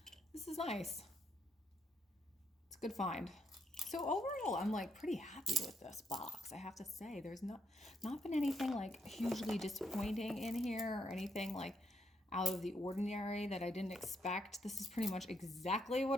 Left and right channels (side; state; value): both; normal; correlation 0.77